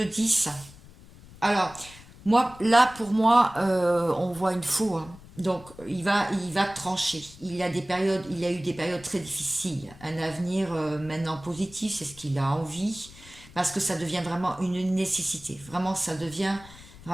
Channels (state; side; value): noise; left; rumble, 20 dB below the sound